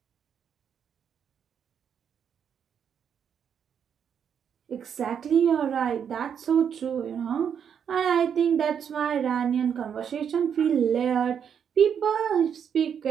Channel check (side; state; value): left; quieter; 7.9 dB